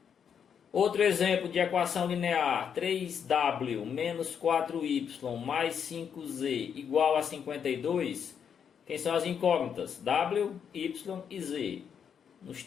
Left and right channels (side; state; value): right; quieter; 7.6 dB